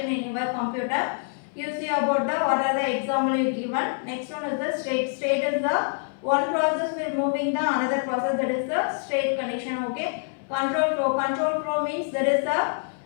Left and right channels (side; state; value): right; silent; 61 dB below the other